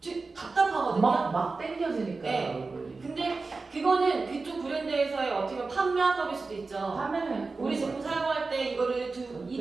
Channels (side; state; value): left; quieter; 3.9 dB